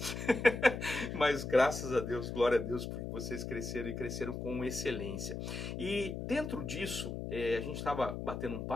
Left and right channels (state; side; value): noise; left; hum, 5 dB below the sound